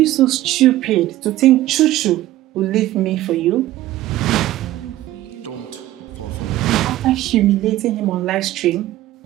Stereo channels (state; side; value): quieter; left; 15.0 dB